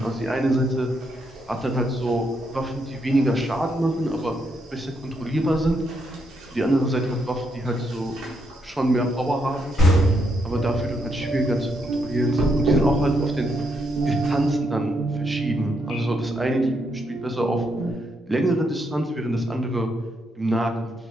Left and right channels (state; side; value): normal; both; correlation 0.78